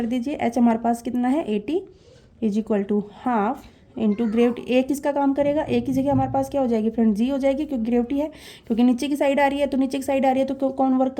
दीजिए, एच हमारे पास कितना है 80 is equal to half into gravity. ए किसका काम करेगा, ए की जगह हमारे पास क्या हो जाएगी फ्रेंड, जी हो जाएगी, क्योंकि ग्रेविटी है, क्योंकि नीचे की साइड आ रही है, तो नीचे की साइड आ रही है तो कौन वर्क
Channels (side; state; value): both; identical; correlation 1.00